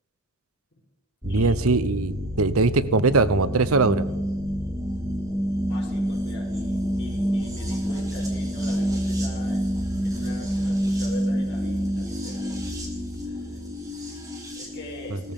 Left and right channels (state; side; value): normal; both; correlation 0.50